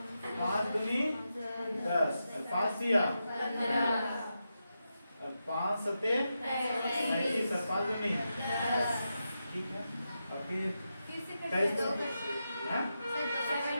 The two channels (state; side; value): inverted; both; correlation -0.88